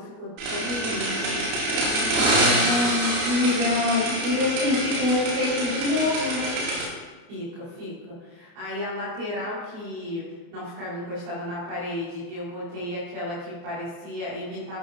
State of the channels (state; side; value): late; left; 29 ms